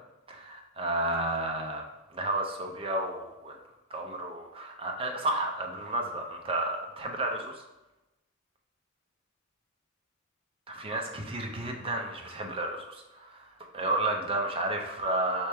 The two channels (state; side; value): normal; both; correlation -0.17